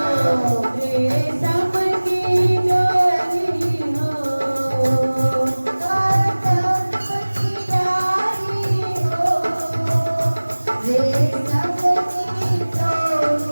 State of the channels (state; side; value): inverted; both; correlation -1.00